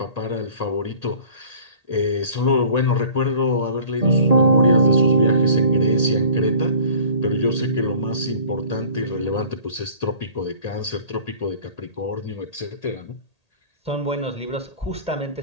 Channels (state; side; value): late; right; 1.8 ms